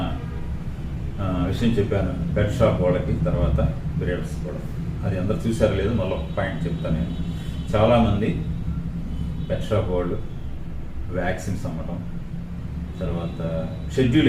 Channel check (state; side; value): identical; both; correlation 1.00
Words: విషయం చెప్పాను, పెట్ షాప్ వాళ్ళకి, తర్వాత బ్రీడర్స్ కూడా. అది అందరు చూసారో లేదు, మళ్ళీ ఒక పాయింట్ చెప్తాను నేను. చాలామంది పెట్ షాప్ వాళ్ళు వ్యాక్సిన్స్ అమ్మటం, తర్వాత షెడ్యూల్